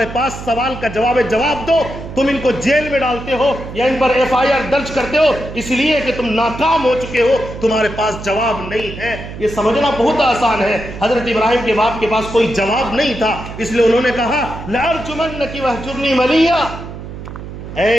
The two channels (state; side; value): noise; right; hum, 11 dB below the sound